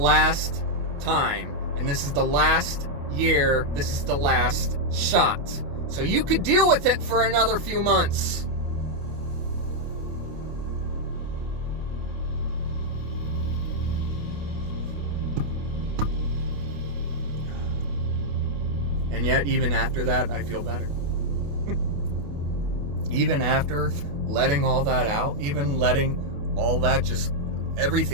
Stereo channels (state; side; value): late; left; 28 ms